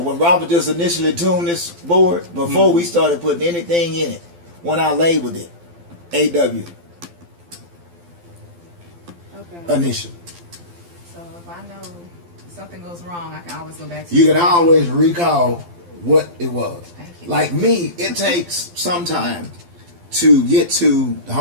Robert just initially tuned this board, before we started putting anything in it, when I labeled it, AW. Okay. Initial. So if I know something goes wrong, I can always go back to You can always recall what it was. Thank you. Like me, it takes some time to get to the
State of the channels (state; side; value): late; left; 12 ms